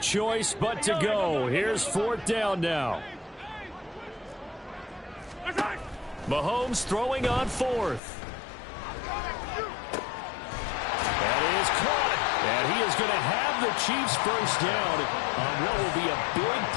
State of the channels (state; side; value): drops out; right; at 8.0 s